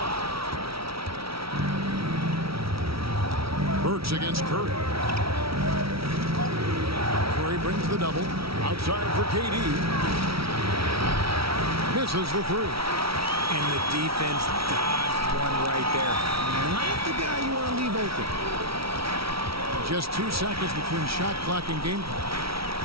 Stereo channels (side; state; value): left; late; 0.75 ms